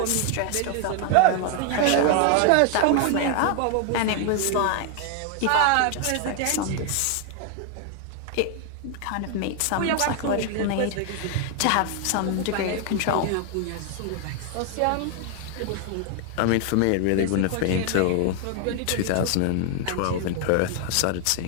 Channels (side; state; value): both; different; correlation 0.00